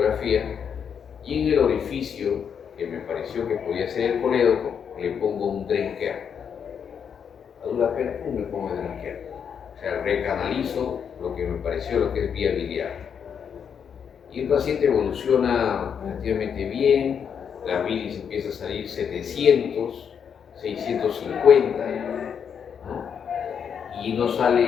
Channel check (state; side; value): quieter; right; 7.4 dB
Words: y en el orificio que me pareció que podía ser el colédoco, le pongo un drain care. A dura pena, me pongo el drain care. O sea, recanalizo lo que me pareció lo que es vía biliar. Y el paciente evoluciona relativamente bien, la bilis empieza a salir 700, 650, ¿no? Y no